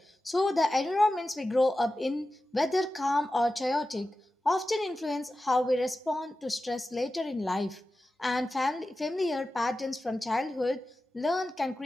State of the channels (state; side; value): normal; both; correlation 0.94